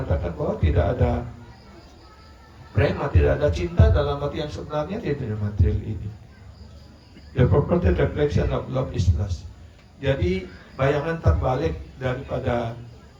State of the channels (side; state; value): both; identical; correlation 1.00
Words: bahwa tidak ada prema, tidak ada cinta dalam arti yang sebenarnya di dunia material ini. The purported reflection of love is lust. Jadi bayangan terbalik daripada